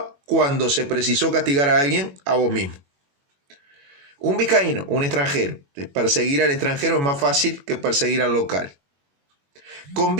Cuando se precisó castigar a alguien, a vos mismo. Un vizcaíno, un extranjero. Perseguir al extranjero es más fácil que perseguir al local.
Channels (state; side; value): late; left; 21 ms